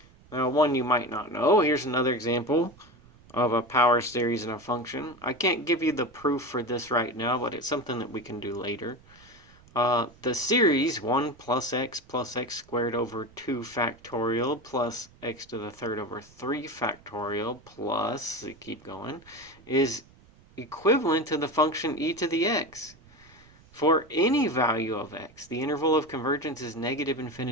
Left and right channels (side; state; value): right; noise; rumble, 26 dB below the sound